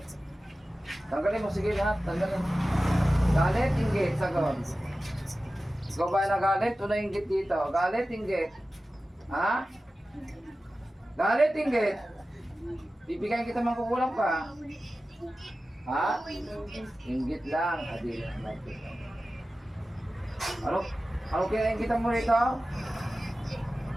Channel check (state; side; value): normal; both; correlation 0.95